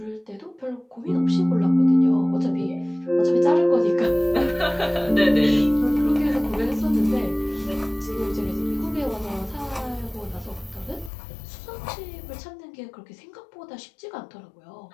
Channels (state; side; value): drops out; right; at 11.1 s